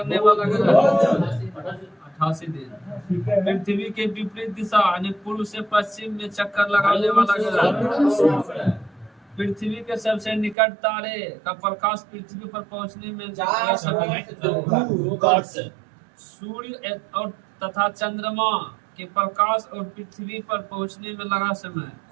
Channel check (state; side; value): drops out; left; at 10.6 s